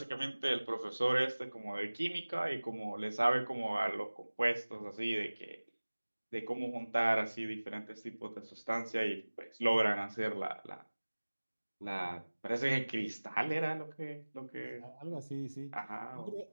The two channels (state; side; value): inverted; both; correlation -1.00